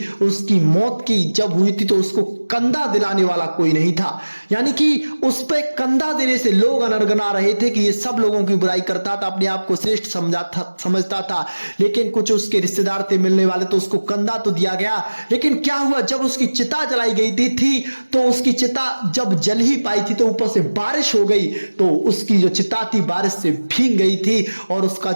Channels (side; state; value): both; inverted; correlation -1.00